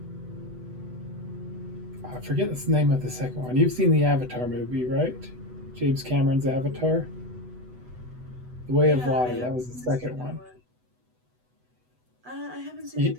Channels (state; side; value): late; left; 8.0 ms